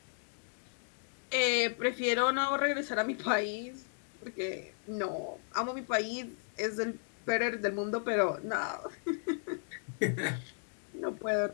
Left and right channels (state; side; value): silent; right; digital silence